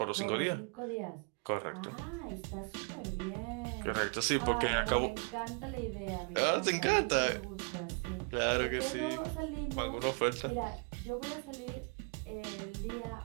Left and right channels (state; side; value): quieter; left; 36.1 dB